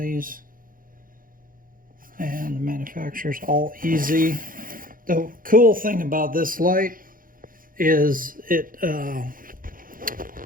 these. And the manufacturer's AllEasy. The cool thing about this light is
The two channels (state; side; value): late; left; 0.40 ms